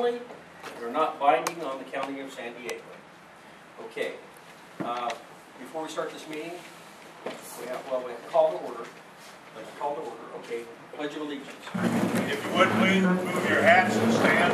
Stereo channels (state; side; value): identical; both; correlation 1.00